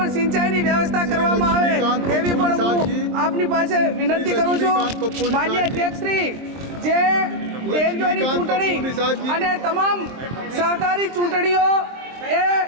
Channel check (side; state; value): left; late; 23 ms